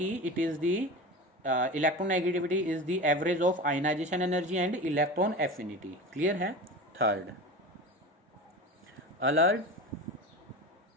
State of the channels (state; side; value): normal; both; correlation 0.30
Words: it is the electron negativity is the average of ionization energy and electron affinity, clear है। Third Allred